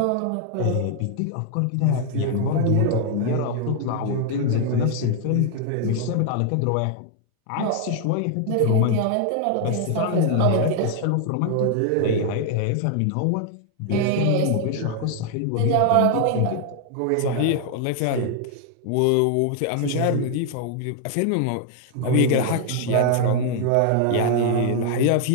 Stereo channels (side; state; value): both; different; correlation 0.00